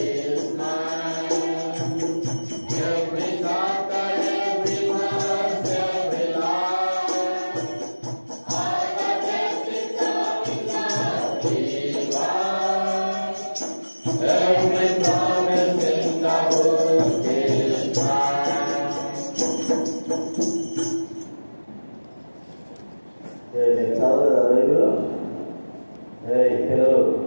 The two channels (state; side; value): inverted; both; correlation -1.00